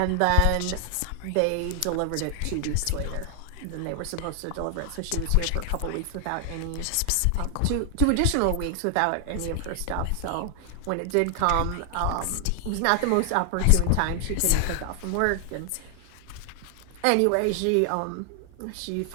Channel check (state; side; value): different; both; correlation 0.00